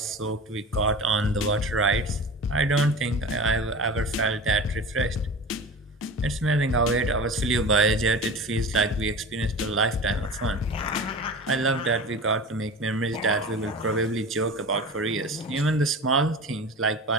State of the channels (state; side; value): normal; both; correlation 0.33